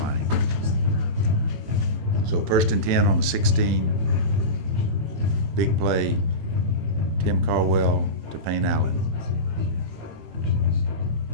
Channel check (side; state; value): left; late; 18 ms